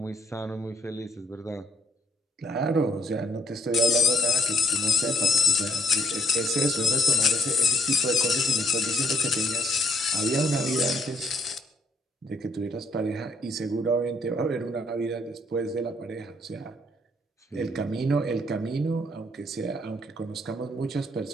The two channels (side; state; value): both; normal; correlation 0.69